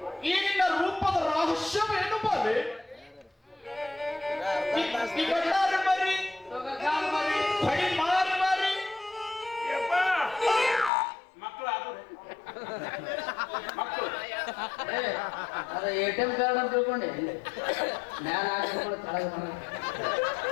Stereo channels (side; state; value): right; drops out; at 10.9 s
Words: ಈ ನಿನ್ನ ರೂಪದ ರಹಸ್ಯವೇನು ಬಾಲೆ? ಮರಿ ಬಡಿ ಮಾರಿ ಮಾರಿ ಮಕ್ಕಳು ಮಕ್ಕಳು ಅದ ATM ಕಾರ್ಡ್ ಅಂತ ತಿಳ್ಕೊಂಡೆ. ಮ್ಯಾಲ ಹಾಕೊಂಡು ಕೆಳಗೆ ಬರ